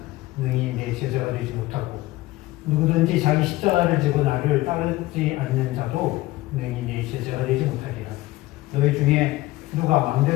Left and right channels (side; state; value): right; quieter; 18.6 dB